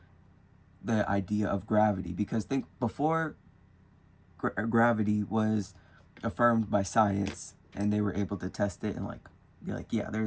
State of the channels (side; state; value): both; identical; correlation 1.00